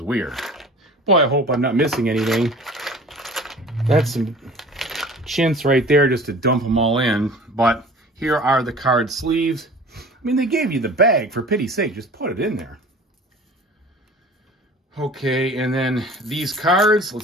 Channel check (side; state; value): both; normal; correlation 0.44